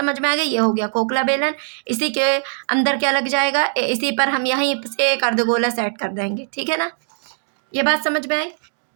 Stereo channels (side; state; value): left; silent; 65 dB below the other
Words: में आ गई, ये हो गया खोखला बेलन। इसी के अंदर क्या लग जाएगा, इसी पर हम यहीं से एक अर्धगोला सेट कर देंगे, ठीक है ना। ये बात समझ में आई,